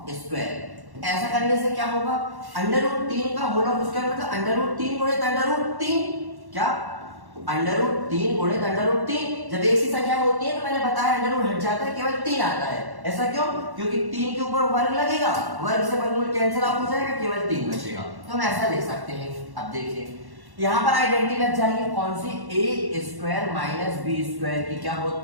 स्क्वायर। ऐसा करने से क्या होगा, √3 का होल ऑफ स्क्वायर मतलब √3 गुणित √3, क्या √3 गुणित √3। जब एक सी संख्या होती है तो मैंने बताया अंडर हट जाता है, केवल 3 आता है। ऐसा क्यों, क्योंकि 3 के ऊपर वर्ग लगेगा, वर्ग से वर्गमूल कैंसिल आउट हो जाएगा, केवल 3 बचेगा, तो हम ऐसा लिख सकते हैं। अब देखिए यहाँ पर आइडेंटिटी लग जाएगी, कौन सी, a² - b² की क्या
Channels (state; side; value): late; left; 1.1 ms